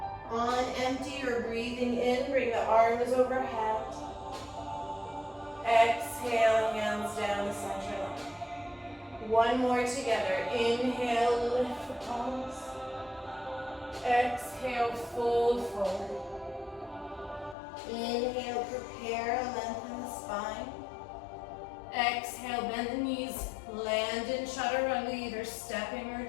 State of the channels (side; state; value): right; drops out; at 17.6 s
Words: On empty, you're breathing in, bring the arms overhead. Exhale, hands down the center line. One more together, inhale, lift the palms. Exhale, fold forward. Inhale, prepare, lengthen the spine. Exhale, bend the knees, land in Chaturanga, either stepping or